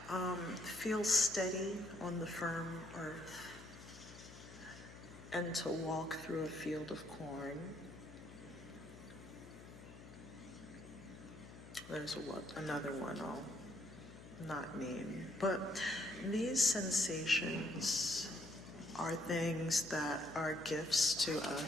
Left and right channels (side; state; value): left; noise; hum, 16 dB below the sound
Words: feel steady on the firm earth. And to walk through a field of corn. There's another one I'll not name. But these sensations are things that are gifts to